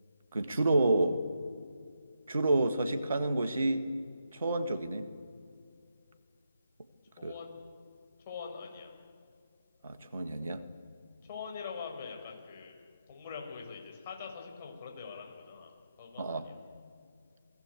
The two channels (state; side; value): inverted; both; correlation -0.83